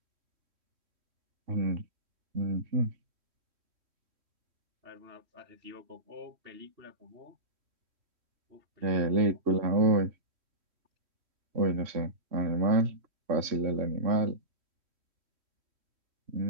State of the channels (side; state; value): left; late; 3.1 ms